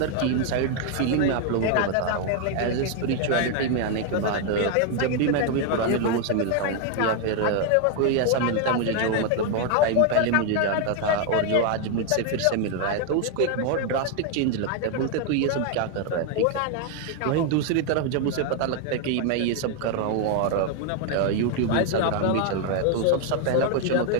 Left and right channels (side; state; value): both; different; correlation 0.01